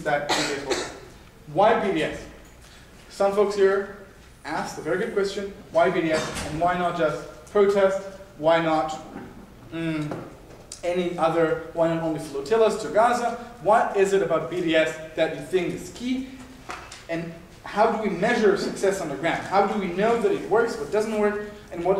that BDS holds. Why BDS? Some folks here asked a very good question, why BDS, and why not just protest? Why not any other, why not only flotillas to Gaza? What is it about BDS that you think is key? And how do we measure success on the ground? How do we know that it works, what doesn't work, and what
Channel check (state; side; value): identical; both; correlation 1.00